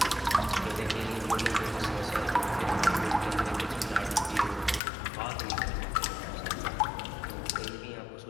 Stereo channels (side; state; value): right; drops out; at 4.8 s